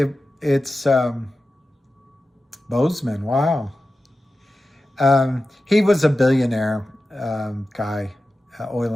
it's Bozeman, wow. He was a billionaire guy, oil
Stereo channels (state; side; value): normal; both; correlation 0.93